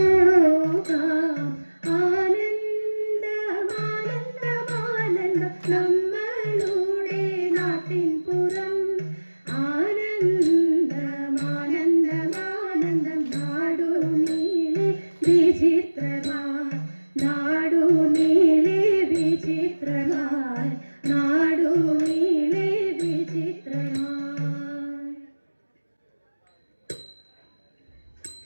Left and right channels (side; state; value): both; inverted; correlation -1.00